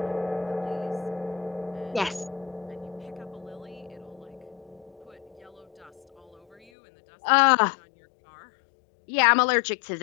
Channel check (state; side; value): drops out; right; at 6.6 s